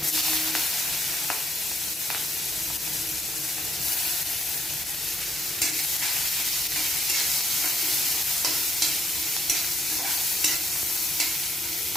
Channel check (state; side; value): normal; both; correlation 0.73